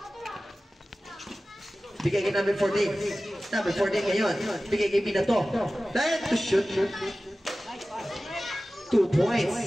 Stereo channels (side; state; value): both; normal; correlation 0.96